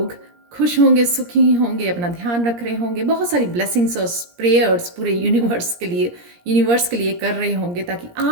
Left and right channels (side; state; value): left; late; 17 ms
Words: खुश होंगे, सुखी होंगे, अपना ध्यान रख रहे होंगे, बहुत सारी ब्लेसिंग्स और प्रेयर्स पूरे यूनिवर्स के लिए कर रहे होंगे ताकि